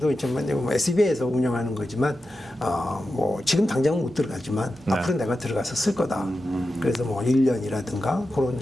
있지만 SBA에서 운영하는 거지만 뭐 지금 당장은 못 들어가지만 네. 앞으로 내가 들어가서 쓸 거다. 그래서 뭐 1년이라든가 그런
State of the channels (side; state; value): both; normal; correlation 0.91